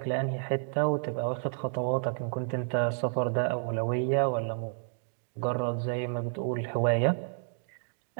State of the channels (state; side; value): silent; left; digital silence